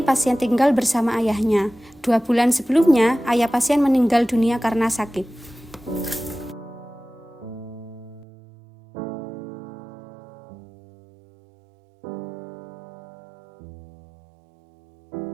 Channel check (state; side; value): drops out; left; at 8.2 s